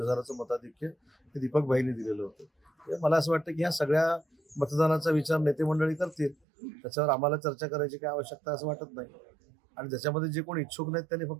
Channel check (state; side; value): drops out; left; at 6.4 s